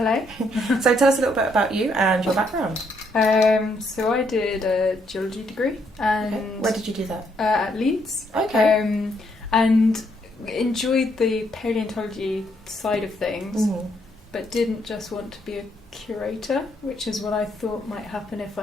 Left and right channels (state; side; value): normal; both; correlation 0.73